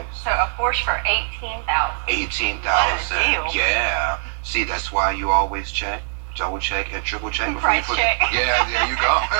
So a Porsche for $18,000. $18,000. What a deal. Yeah. See, that's why you always check, double check, and triple check before Price you put check. it. Yeah, there you go.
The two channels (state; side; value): silent; left; digital silence